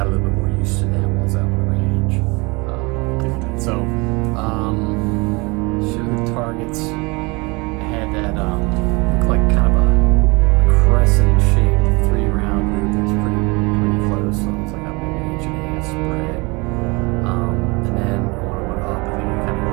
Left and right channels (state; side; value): quieter; left; 26.9 dB